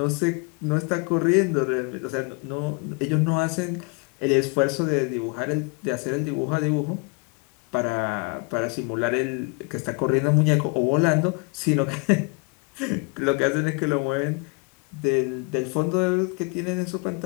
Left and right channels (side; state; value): right; quieter; 31.2 dB